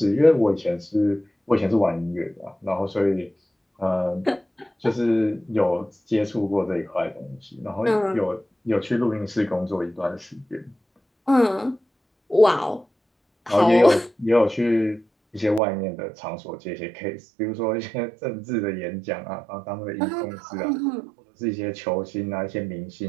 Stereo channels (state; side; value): drops out; left; at 15.6 s